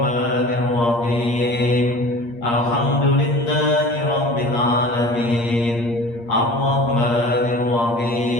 Alhamdulillahi rabbil alamin. Ar-Rahmanir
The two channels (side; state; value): right; late; 8.5 ms